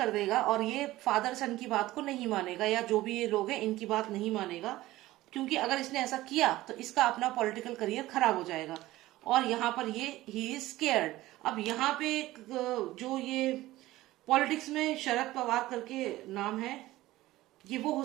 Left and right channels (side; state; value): left; quieter; 16.9 dB